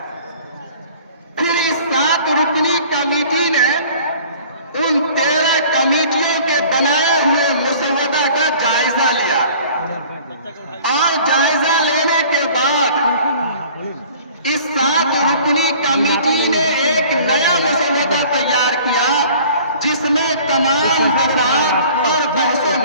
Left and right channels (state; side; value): inverted; both; correlation -0.49